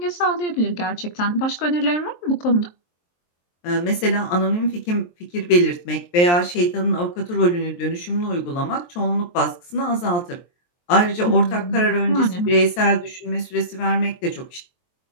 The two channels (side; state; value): right; late; 23 ms